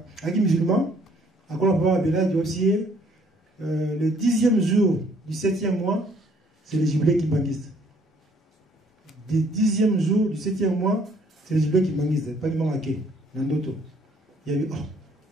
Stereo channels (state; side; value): normal; both; correlation 0.62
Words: un musulman, à quoi on peut appeler du aussi. Le 10e jour du 7e mois, c'est le jubilé qui banguiste. Le 10e jour du 7e mois, c'est le jubilé qui banguiste. Pas du monde à qui, dans d'autres. Il y a eu,